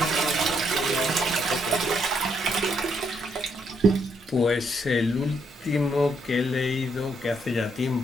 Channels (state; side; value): normal; both; correlation 0.74